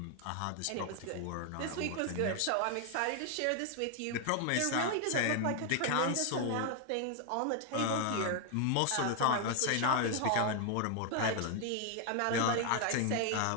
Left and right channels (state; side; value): different; both; correlation 0.00